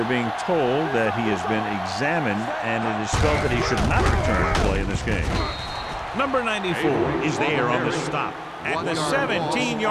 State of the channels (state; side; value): identical; both; correlation 1.00